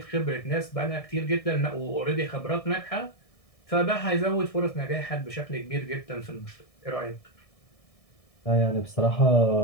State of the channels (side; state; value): right; late; 1.6 ms